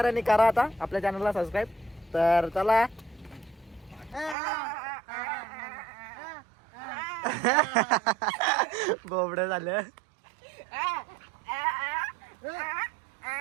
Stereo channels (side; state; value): left; drops out; at 4.4 s